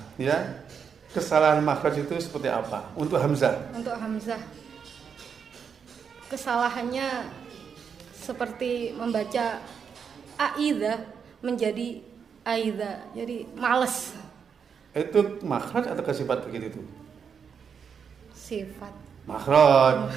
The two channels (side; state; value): left; quieter; 6.7 dB